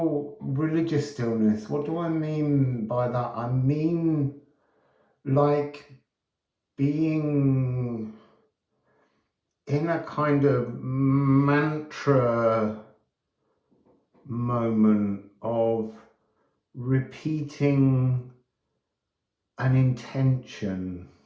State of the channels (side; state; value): both; identical; correlation 1.00